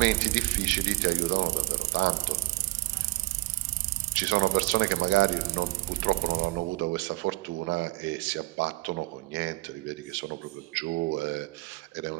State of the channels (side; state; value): left; quieter; 21.4 dB